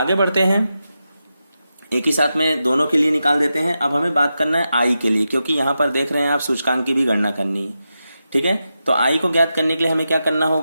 बढ़ते हैं, एक ही साथ में दोनों के लिए निकाल देते हैं। अब हमें बात करना है I के लिए, क्योंकि यहां पर देख रहे हैं आप सूचकांक की भी गणना करनी है, ठीक है। तो I को ज्ञात करने के लिए हमें क्या करना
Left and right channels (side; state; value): both; inverted; correlation -0.89